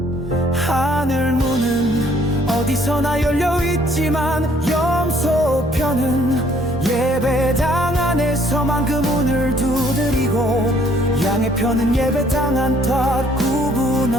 하늘문은 어디서나 열려있지만 염소편은 예배당 안에서만 그 문을 두드리고, 양의 편은 예배당한 탓 구분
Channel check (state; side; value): normal; both; correlation 0.62